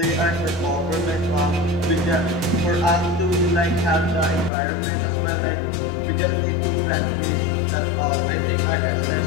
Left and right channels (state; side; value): drops out; right; at 4.5 s